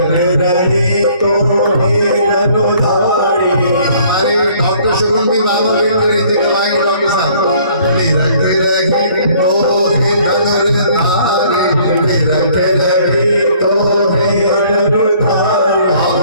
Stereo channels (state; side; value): inverted; both; correlation -0.58